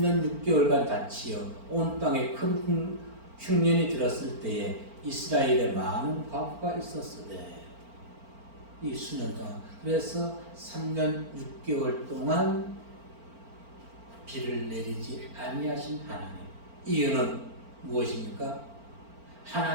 6개월간 닫히어 온 땅에 큰 흉년이 들었을 때에 이스라엘에 많은 과부가 있었으되 이 수년 동안 그래서 3년 6개월 동안 비를 내리지 아니하신 하나님. 이유는 무엇입니까?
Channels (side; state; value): left; late; 4.4 ms